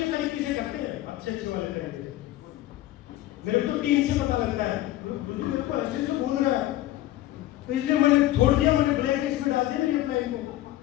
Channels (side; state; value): right; quieter; 15.1 dB